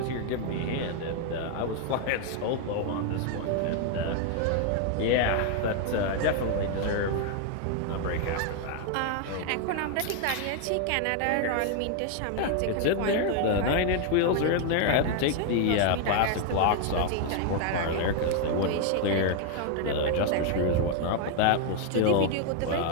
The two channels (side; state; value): both; different; correlation 0.00